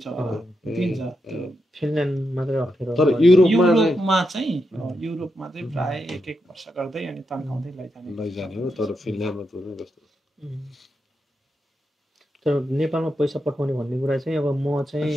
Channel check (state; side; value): normal; both; correlation 0.85